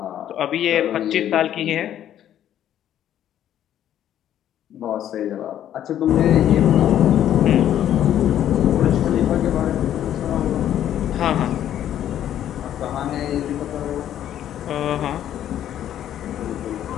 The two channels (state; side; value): quieter; right; 11.1 dB